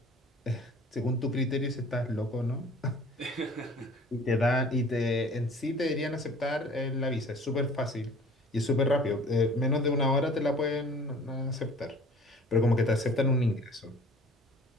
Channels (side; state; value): both; normal; correlation 0.48